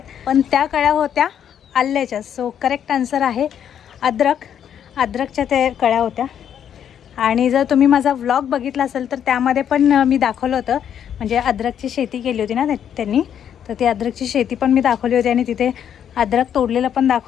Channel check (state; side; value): quieter; right; 9.1 dB